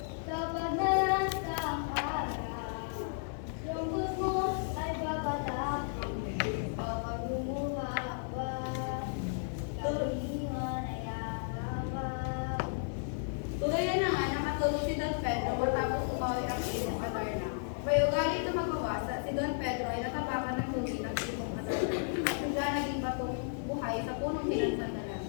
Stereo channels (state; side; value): silent; right; digital silence